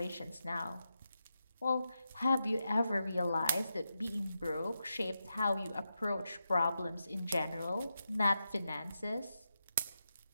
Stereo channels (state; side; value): inverted; both; correlation -0.87